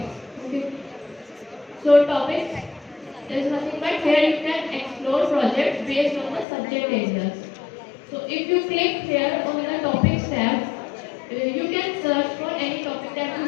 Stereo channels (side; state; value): right; drops out; at 6.5 s